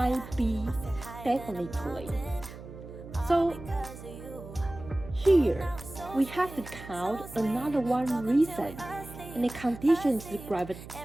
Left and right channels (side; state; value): right; noise; hum, 14 dB below the sound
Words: be definitely, So here we have to count another one reason, and the conditions